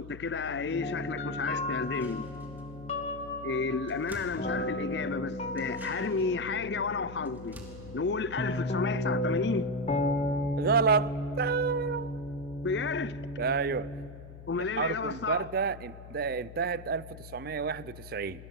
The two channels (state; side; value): noise; left; hum, 15 dB below the sound